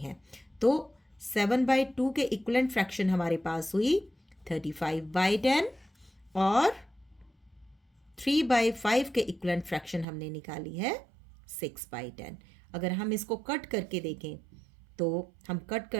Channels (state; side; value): drops out; left; at 10.1 s